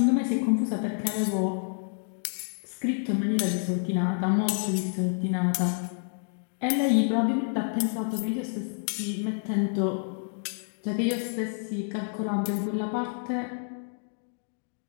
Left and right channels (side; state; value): right; silent; 59 dB below the other